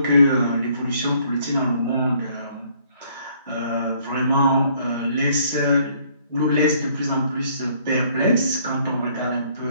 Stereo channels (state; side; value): inverted; both; correlation -0.63